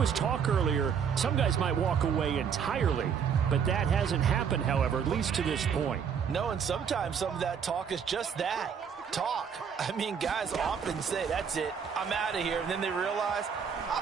talk earlier, some guys might walk away entirely. But that hasn't happened, however, at least to this point. No, and sometimes some of that talk is just that, talk. I mean, guys often say, that's it, I'm out of here. And then they realize,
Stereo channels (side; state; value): left; quieter; 7.1 dB